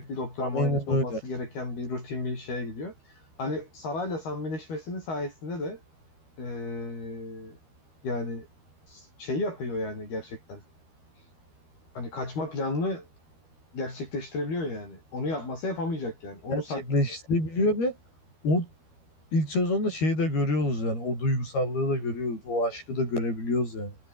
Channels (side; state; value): right; late; 13 ms